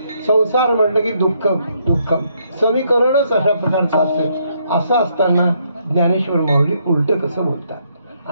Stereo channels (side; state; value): both; inverted; correlation -0.73